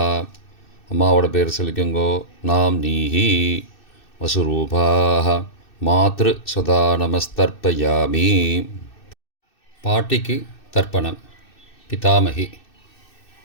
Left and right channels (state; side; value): late; right; 2.6 ms